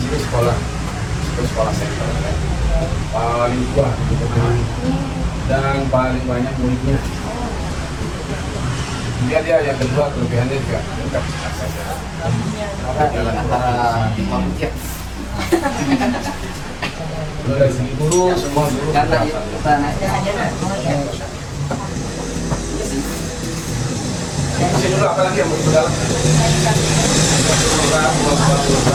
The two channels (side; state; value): both; identical; correlation 1.00